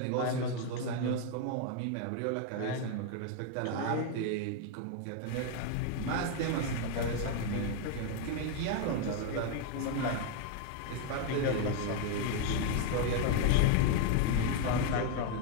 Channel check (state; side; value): different; both; correlation 0.01